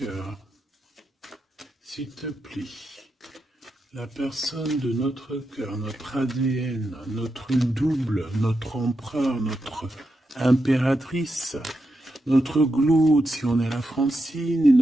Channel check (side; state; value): both; normal; correlation 0.86